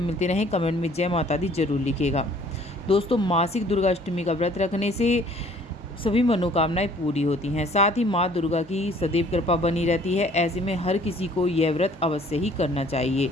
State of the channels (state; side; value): normal; both; correlation 0.56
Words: मिलते रहे कमेंट में जय माता दी जरूर लिखिएगा। दोस्तों, मासिक दुर्गा अष्टमी का व्रत रखने से सभी मनोकामनाएं पूरी होती हैं, साथ ही माँ दुर्गा की सदैव कृपा बनी रहती है। ऐसे में हर किसी को यह व्रत अवश्य ही करना चाहिए।